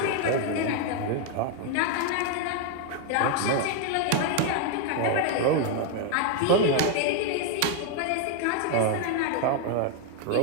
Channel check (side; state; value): both; different; correlation 0.00